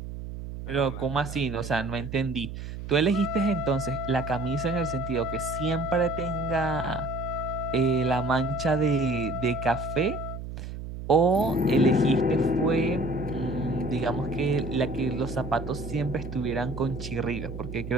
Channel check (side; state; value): right; noise; hum, 9 dB below the sound